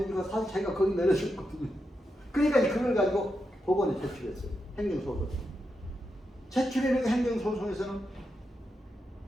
사진 자기가 거기 내려줬거든요. 그러니까 그걸 가지고 법원에 제출했어요. 행정소송. 제출해놓은 행정소송에서는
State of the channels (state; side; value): normal; both; correlation 0.86